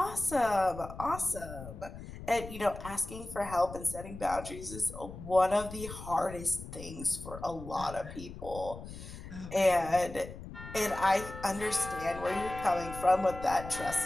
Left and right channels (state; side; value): noise; left; rumble, 12 dB below the sound